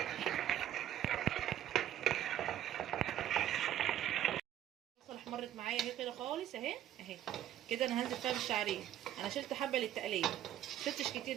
البصله احمرت معايا اهي كده خالص، اهي كده. انا هنزل فيها بالشعريه. انا شلت حبه للتقليه، شلتش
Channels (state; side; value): quieter; left; 11.7 dB